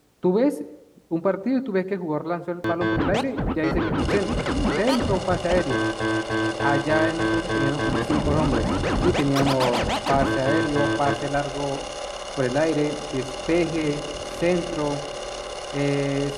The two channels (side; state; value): both; identical; correlation 1.00